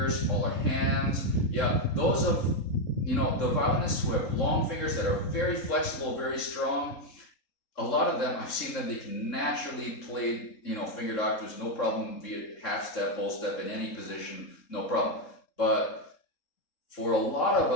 smaller hands. Yeah, those of the violinists who have long fingers that are very flexible, very strong, a lot of them, I've seen them, they can naturally play, fingered octaves, no problem, be it half step, whole step, in any position, no problem. But for a lot of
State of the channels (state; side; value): late; right; 3.8 ms